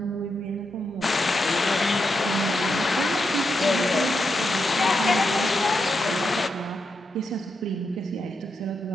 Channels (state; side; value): normal; both; correlation 0.84